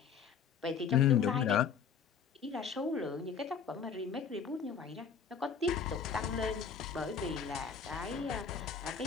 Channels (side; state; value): right; quieter; 6.6 dB